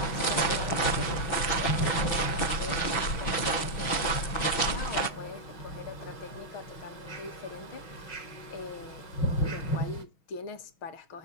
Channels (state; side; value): late; right; 6.2 ms